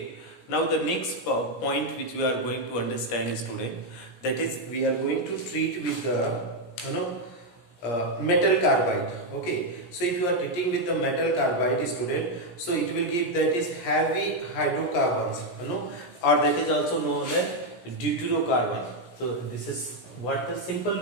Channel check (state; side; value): late; right; 17 ms